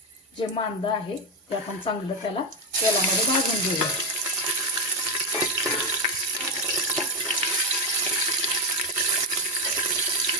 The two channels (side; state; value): both; normal; correlation 0.08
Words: जे मांदा आहे ते आपण चांगलं त्याला तेलामध्ये भाजून घेऊया.